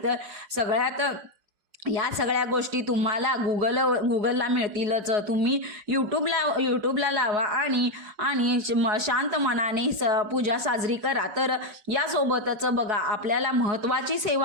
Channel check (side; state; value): left; late; 4.8 ms